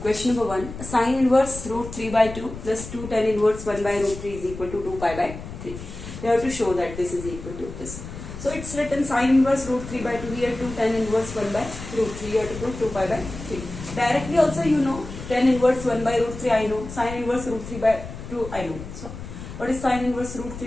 Question number 1. Sine inverse root 3 by 2 plus 2 tan inverse 1 by root 3 is equal to 2 pi by 3. We have to show that this is equal to this. So it's written sine inverse root 3 by 2 here, 2 tan inverse 1 by root 3. You have to prove 2 pi by 3. Directly also you know tan inverse 1 by root 3 I know. Sine inverse root 3 by 2 I know. So what is sine inverse root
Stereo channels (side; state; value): left; noise; rumble, 11 dB below the sound